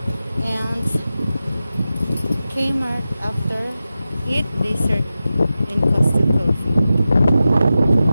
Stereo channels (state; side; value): inverted; both; correlation -0.93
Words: and Kmart after eat dessert in Costa Coffee.